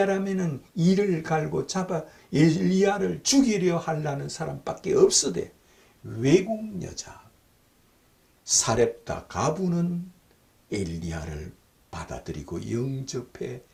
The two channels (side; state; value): both; identical; correlation 1.00